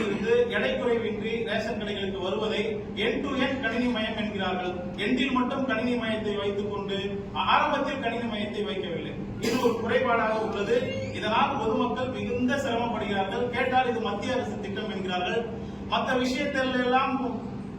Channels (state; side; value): identical; both; correlation 1.00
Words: இருந்து எடை குறைவின்றி ரேஷன் கடைகளுக்கு வருவதை எண்ட் டு எண்ட் கணினி மயம் என்கிறார்கள். எண்டில் மட்டும் கணினி மயத்தை வைத்துக் கொண்டு ஆரம்பத்தில் கணினி மயத்தை வைக்கவில்லை. இது ஒரு குறைபாடாக உள்ளது. இதனால் பொதுமக்கள் மிகுந்த சிரமப்படுகிறார்கள். கேட்டால் இது மத்திய அரசு திட்டம் என்கிறார்கள். மற்ற விஷயத்தில் எல்லாம்